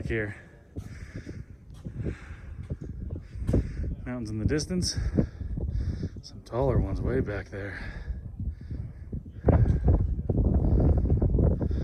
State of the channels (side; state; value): both; identical; correlation 1.00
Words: here. Mountains in the distance. Some taller ones way back there.